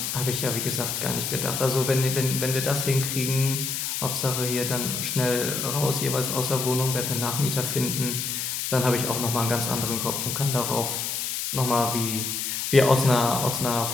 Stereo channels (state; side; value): noise; left; hiss, 2 dB below the sound